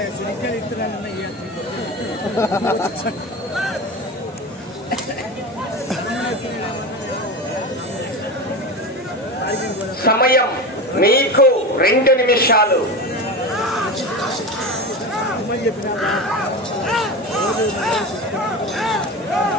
సిరిగ్గాలు ఇస్తున్నానన్న సమయం మీకు 2 నిమిషాలు.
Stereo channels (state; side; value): normal; both; correlation 0.25